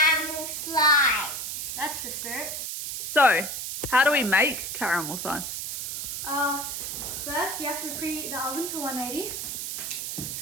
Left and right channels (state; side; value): noise; right; hiss, 4 dB below the sound